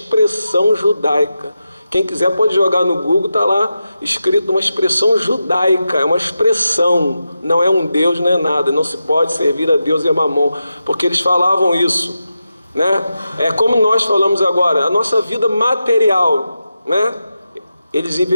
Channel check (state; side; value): inverted; both; correlation -0.90